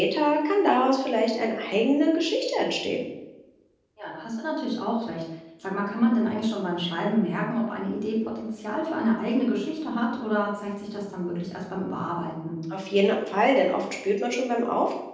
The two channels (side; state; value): both; identical; correlation 1.00